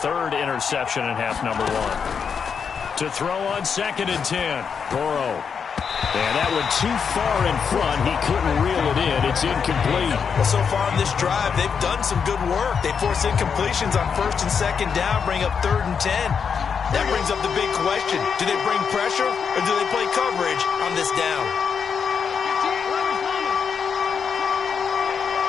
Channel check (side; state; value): right; quieter; 6.5 dB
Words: 3rd interception in half number 1. To throw on 2nd and 10. Burrow. And that went too far in front. He couldn't reel it in. It's incomplete. Well, so far in this drive, they've done some good work. They force incompletions on 1st and 2nd down, bring up 3rd and 10. That brings up the big question. Do they bring pressure or do they play coverage on this down?